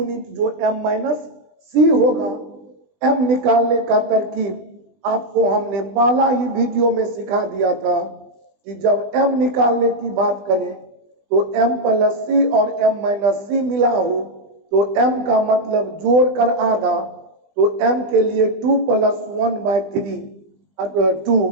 जो m-c होगा। m निकालने का तरकीब आपको हमने पहला ही वीडियो में सिखा दिया था कि जब m निकालने की बात करें तो m+c और m-c मिला हो तो m का मतलब जोड़कर आधा, तो m के लिए 2 + 1/3 2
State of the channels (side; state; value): left; late; 20 ms